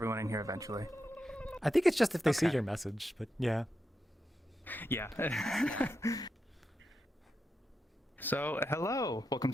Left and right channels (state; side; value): normal; both; correlation 0.87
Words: in here eventually. I think it's just if they see Okay. your message, but yeah. Yeah. So, hello. Welcome